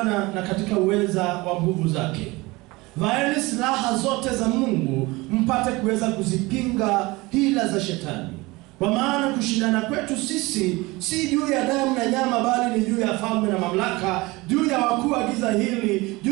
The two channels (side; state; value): left; quieter; 22.4 dB